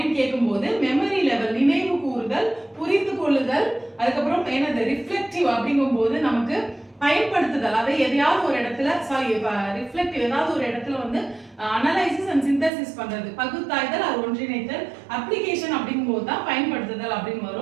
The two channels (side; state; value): left; drops out; at 12.7 s